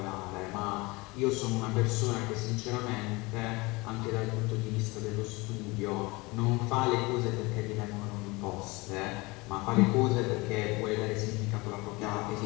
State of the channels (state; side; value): quieter; right; 24.1 dB